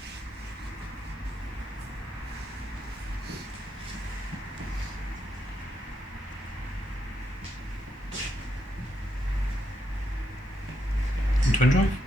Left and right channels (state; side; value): normal; both; correlation 0.79